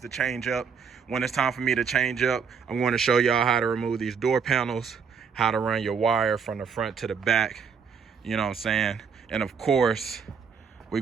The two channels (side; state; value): left; quieter; 6.4 dB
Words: to change up, when it's time for me to change up, I'm going to show y'all how to remove these door panels, how to run your wire from the front to the back, you know what I'm saying? And of course, we're